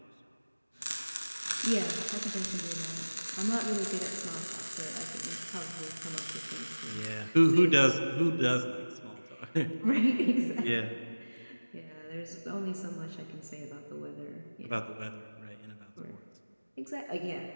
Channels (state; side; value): inverted; both; correlation -1.00